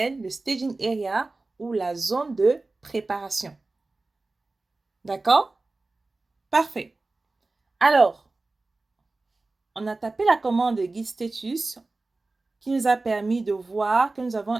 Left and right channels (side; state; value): left; quieter; 3.3 dB